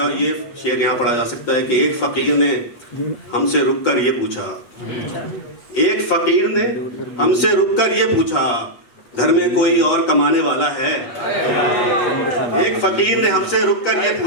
और ये शेर यहाँ पढ़ा जा सकता है कि एक फकीर ने हमसे रुककर ये पूछा, एक फकीर ने हमसे रुककर ये पूछा, घर में कोई और कमाने वाला है? एक फकीर ने हमसे रुककर ये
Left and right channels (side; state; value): right; late; 8.4 ms